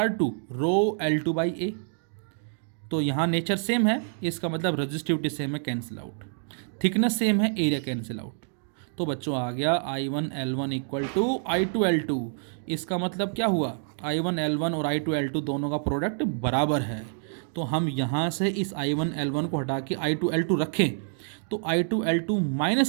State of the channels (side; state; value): left; silent; digital silence